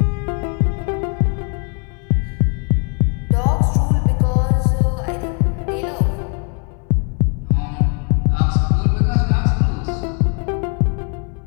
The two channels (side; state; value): right; quieter; 38.3 dB